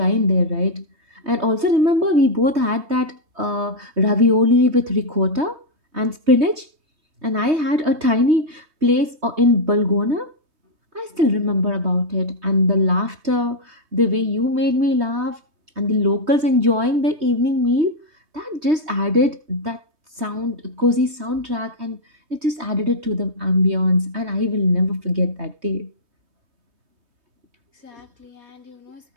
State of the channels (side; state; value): left; late; 3.2 ms